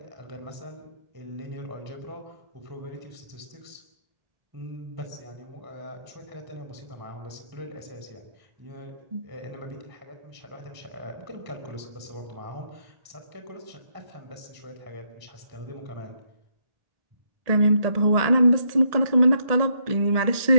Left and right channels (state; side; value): late; left; 1.8 ms